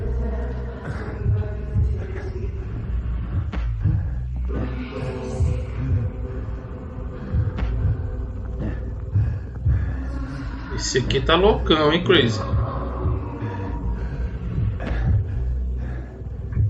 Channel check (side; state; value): both; identical; correlation 1.00